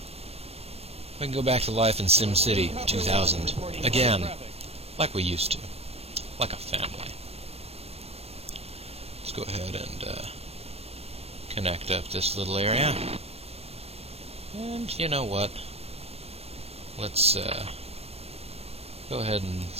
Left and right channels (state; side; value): late; left; 0.29 ms